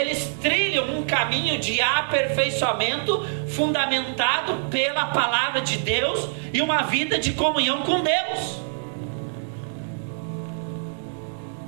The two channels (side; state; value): left; silent; 62 dB below the other